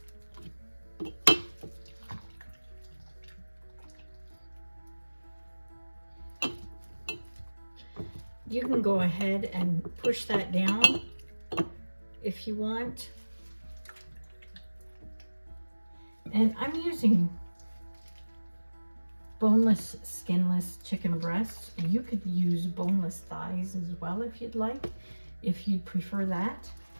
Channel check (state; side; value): inverted; both; correlation -1.00